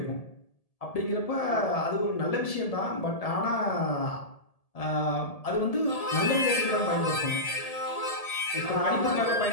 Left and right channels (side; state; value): right; late; 1.7 ms